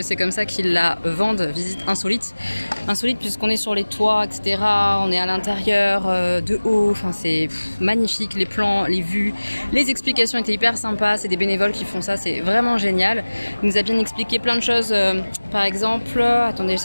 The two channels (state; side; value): inverted; both; correlation -1.00